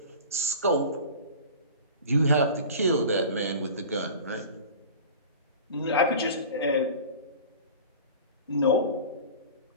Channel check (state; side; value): inverted; both; correlation -0.38